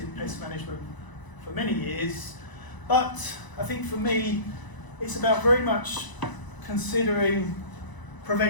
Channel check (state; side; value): late; right; 1.0 ms